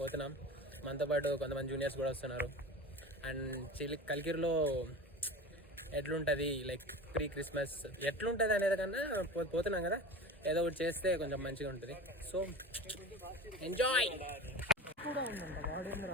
మనతో పాటు కొంతమంది జూనియర్స్ కూడా వస్తున్నారు. అండ్ కలికిరిలో ఎట్లుంటుంది లైక్ ప్రీ క్రిస్మస్ ఎట్లుంటుంది అనేది కన్నా పోతున్నాం కదా, ఏదో ఒకటి చేస్తే కొంచెం మంచిగా ఉంటుంది. So enjoy.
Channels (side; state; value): both; normal; correlation 0.32